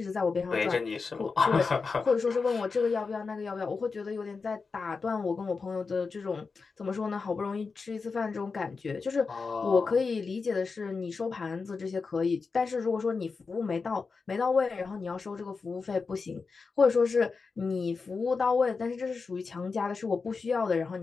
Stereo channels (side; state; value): right; quieter; 4.7 dB